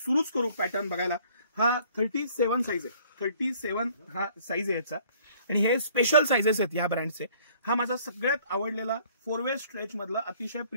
करू पॅटर्न बघायला. हा 37 साईज आहे. 37 हा साईज आहे याचा आणि हे स्पेशल साईजेस आहेत या ब्रँडचे. हा माझा सगळ्यात आवडलेला 4 वे स्ट्रेच मधला अतिशय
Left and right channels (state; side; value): inverted; both; correlation -0.57